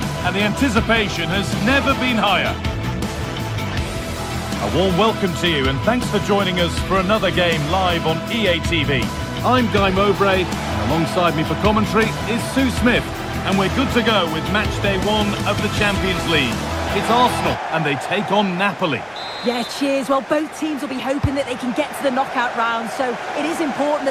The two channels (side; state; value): both; identical; correlation 1.00